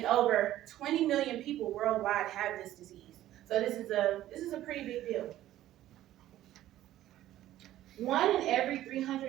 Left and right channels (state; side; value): quieter; left; 13.7 dB